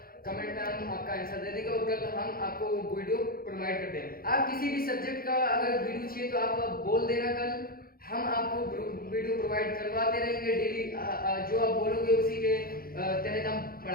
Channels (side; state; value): right; late; 0.43 ms